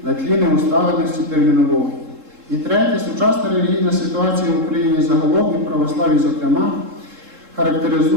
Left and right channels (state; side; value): late; left; 3.7 ms